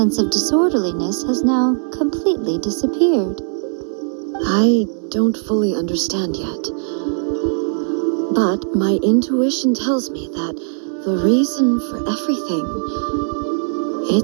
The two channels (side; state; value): left; silent; digital silence